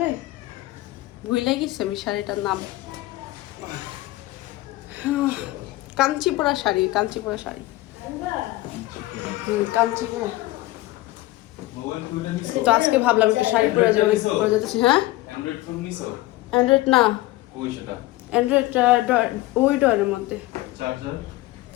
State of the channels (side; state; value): right; quieter; 18.0 dB